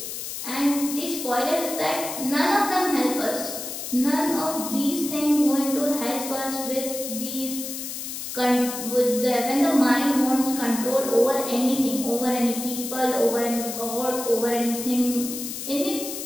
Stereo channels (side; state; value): left; noise; hiss, 7 dB below the sound